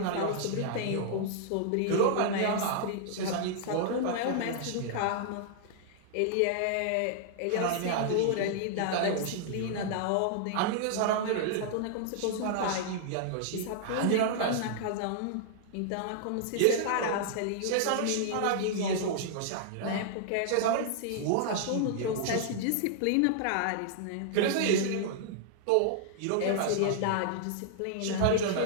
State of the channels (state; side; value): different; both; correlation -0.01